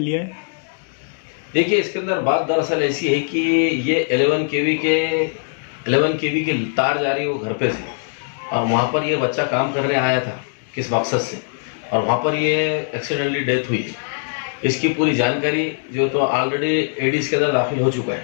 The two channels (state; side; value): silent; right; digital silence